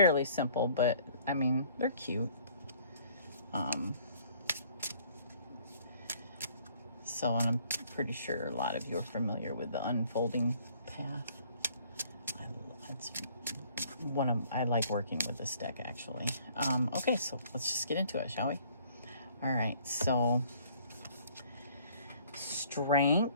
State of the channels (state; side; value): inverted; both; correlation -0.58